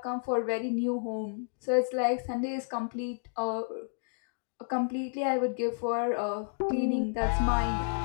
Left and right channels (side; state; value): right; silent; digital silence